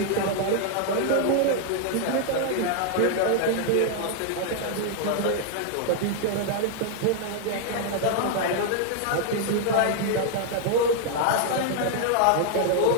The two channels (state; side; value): different; both; correlation 0.00